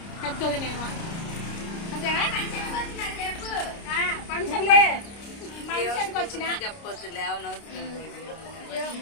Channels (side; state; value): right; late; 29 ms